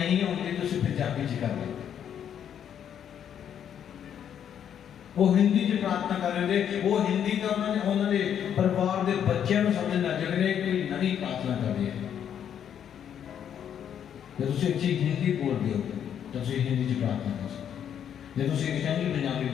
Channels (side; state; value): right; quieter; 9.1 dB